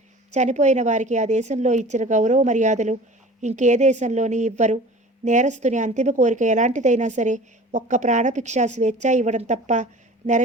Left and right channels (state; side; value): normal; both; correlation 0.42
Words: చనిపోయిన వారికి ఆ దేశంలో ఇచ్చిన గౌరవ మర్యాదలు ఇంకే దేశంలోని ఇవ్వరు. నేరస్తుని అంతిమ కోరిక ఎలాంటిదైనా సరే ఒక్క ప్రాణభిక్ష స్వేచ్ఛ ఇవ్వడం తప్ప